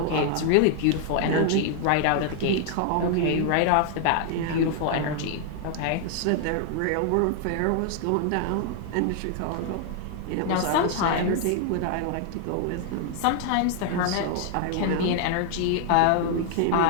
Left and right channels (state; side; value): different; both; correlation 0.00